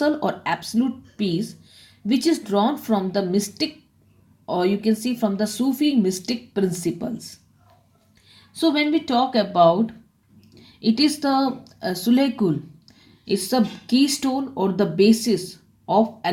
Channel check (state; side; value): identical; both; correlation 1.00